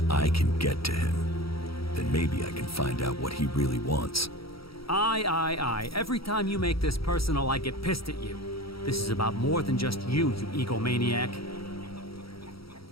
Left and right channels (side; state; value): right; late; 0.75 ms